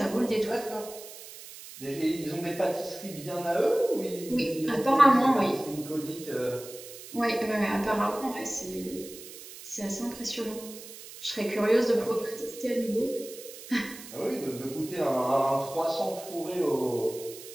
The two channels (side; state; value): right; noise; hiss, 15 dB below the sound